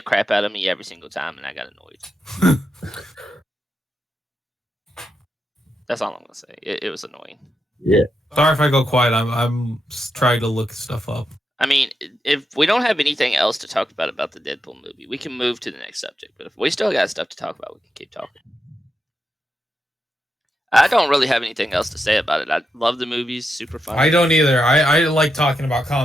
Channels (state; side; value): normal; both; correlation 0.86